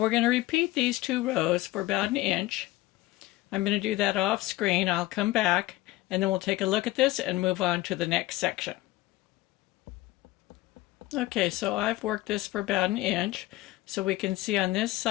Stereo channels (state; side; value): quieter; right; 17.8 dB